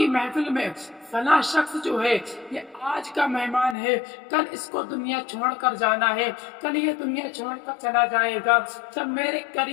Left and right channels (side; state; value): right; drops out; at 3.8 s